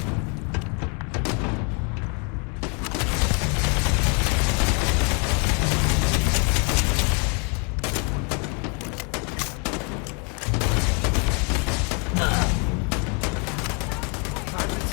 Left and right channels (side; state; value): right; quieter; 35.4 dB